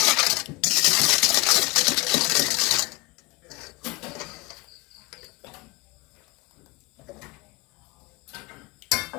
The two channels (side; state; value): right; quieter; 24.1 dB